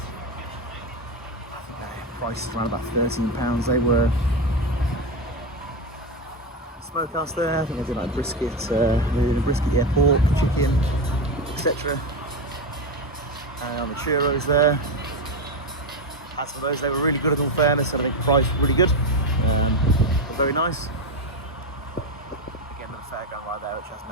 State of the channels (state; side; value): normal; both; correlation 0.14